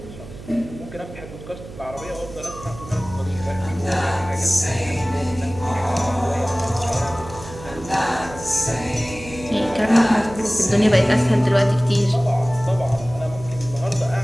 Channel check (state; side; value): noise; right; hum, 14 dB below the sound